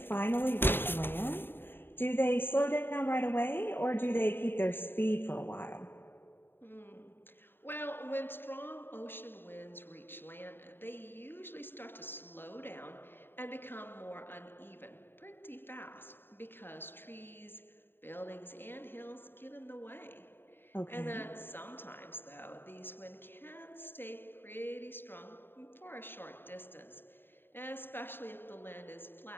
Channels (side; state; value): right; late; 0.10 ms